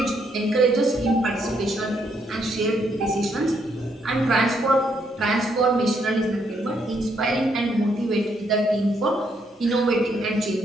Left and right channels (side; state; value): both; normal; correlation 0.74